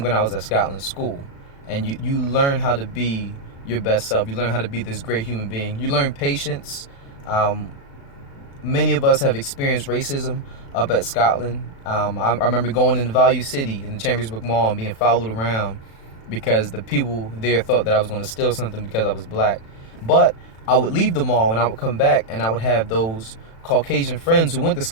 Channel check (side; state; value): right; late; 36 ms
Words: when I was at Scotland School. And you learn how to be your best self. You learn how to be this great human being. You learn patience. Many of us have experienced racism up at Scotland. I remember going into Value City in the Chambersburg Mall and being followed around because the people there thought that I was going to steal something because I was black. But I would leave the mall and I would come back and I would have those Caucasian friends who went to